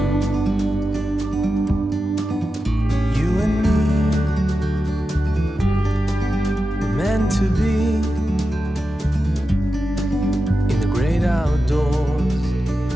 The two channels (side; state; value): both; normal; correlation 0.91